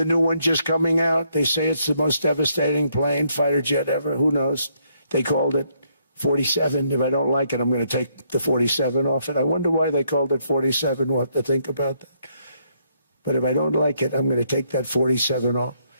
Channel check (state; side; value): inverted; both; correlation -0.72